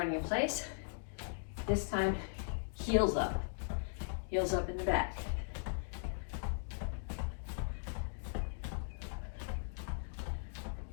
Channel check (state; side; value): silent; right; digital silence